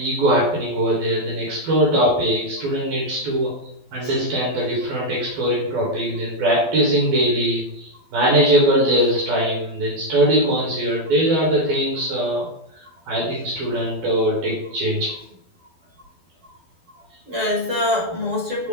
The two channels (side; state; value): left; late; 12 ms